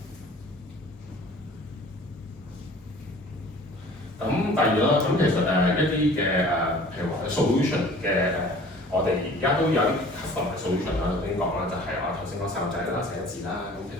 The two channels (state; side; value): normal; both; correlation 0.48